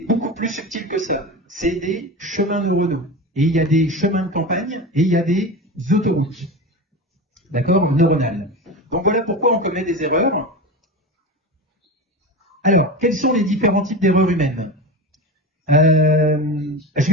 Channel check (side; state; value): both; normal; correlation 0.26